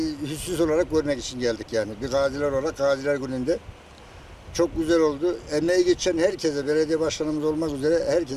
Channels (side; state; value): both; identical; correlation 1.00